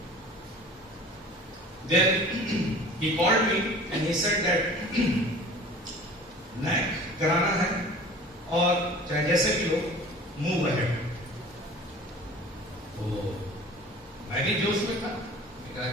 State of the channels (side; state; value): both; normal; correlation 0.43